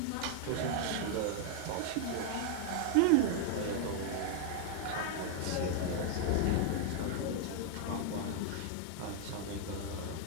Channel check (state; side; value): different; both; correlation 0.00